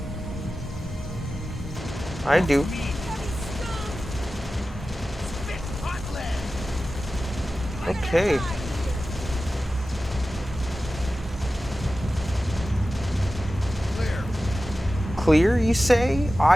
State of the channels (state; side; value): normal; both; correlation 0.94